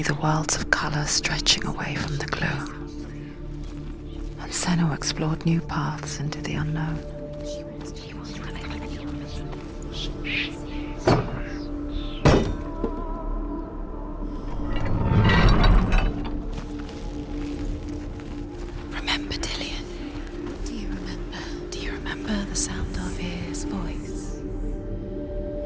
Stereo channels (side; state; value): both; identical; correlation 1.00